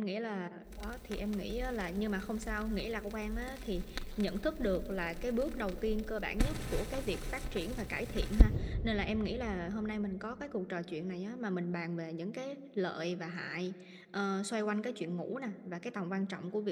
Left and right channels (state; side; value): identical; both; correlation 1.00